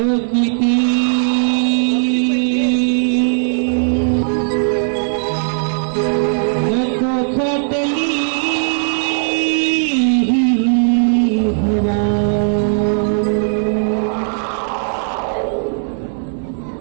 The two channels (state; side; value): silent; left; digital silence